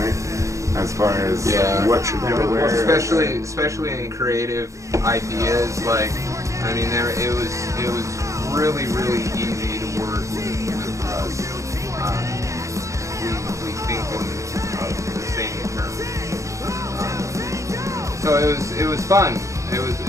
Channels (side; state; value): left; late; 0.15 ms